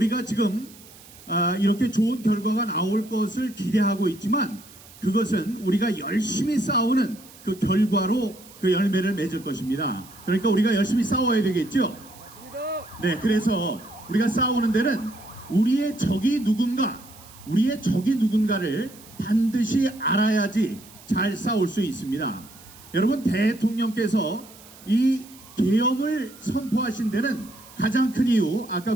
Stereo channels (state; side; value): noise; right; hiss, 21 dB below the sound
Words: 지금 이렇게 좋은 결과가 나올 것을 기대하고 있지만, 그것은 우리가 열심히 싸우는 그 결과로 그 열매를 맺을 것입니다. 그러니까 우리가 열심히 싸워야 되겠죠. 맞습니다. 네, 그래서 우리가 싸우는 데는 우리의 적이 누군가를 반드시 알아야지 잘 싸울 수 있습니다. 여러분, 대통령께서 이 계엄을 선포하신 데는 가장 큰 이유,